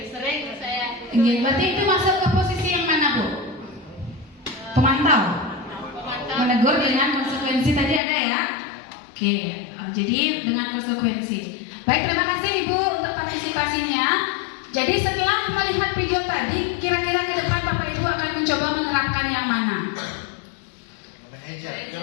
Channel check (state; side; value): drops out; right; at 8.0 s